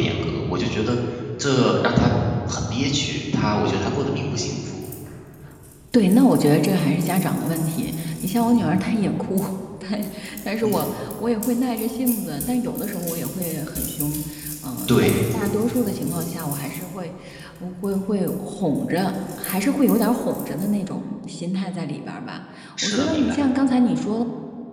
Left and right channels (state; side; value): identical; both; correlation 1.00